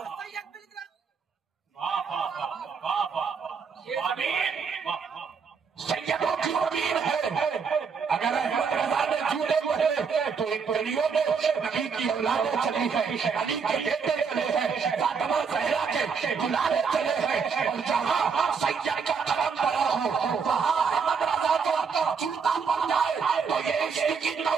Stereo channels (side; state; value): left; quieter; 5.9 dB